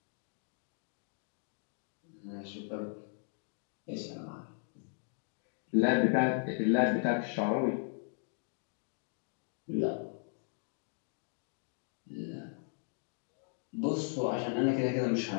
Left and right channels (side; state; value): right; silent; digital silence